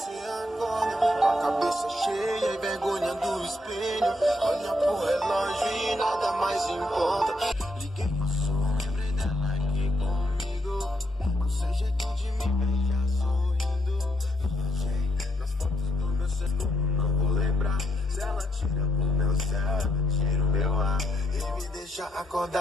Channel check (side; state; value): both; normal; correlation 0.75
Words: acorda com a cabeça cheia e vergonha do espelho. Olha pro relógio e nada mais importa. Liguei pro som, lembrei dela aqui comigo. Com seu jeito de me beijar sorrindo. Nas fotos do meu celular não vou lembrar. Se ela tira o meu céu, tira o meu ar e me deixa